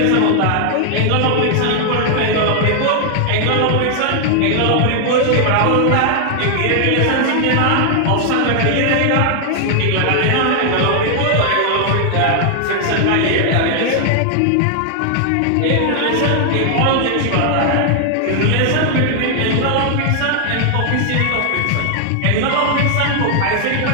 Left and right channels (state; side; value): different; both; correlation 0.00